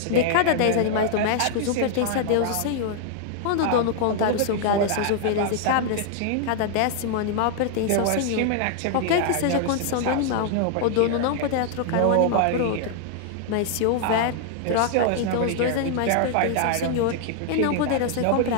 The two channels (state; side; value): different; both; correlation 0.00